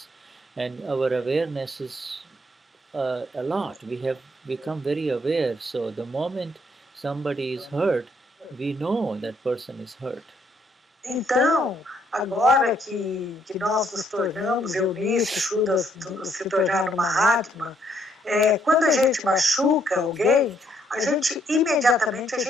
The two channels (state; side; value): normal; both; correlation 0.70